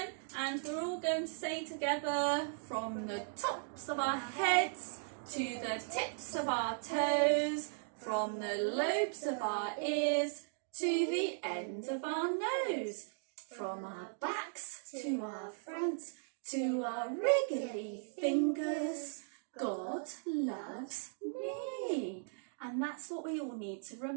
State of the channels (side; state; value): left; silent; digital silence